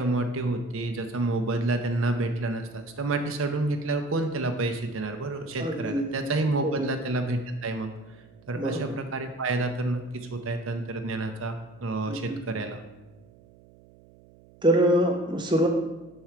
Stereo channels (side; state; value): right; noise; hum, 25 dB below the sound